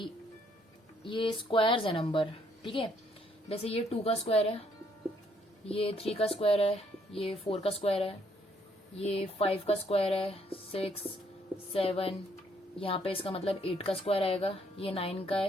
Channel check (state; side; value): normal; both; correlation 0.68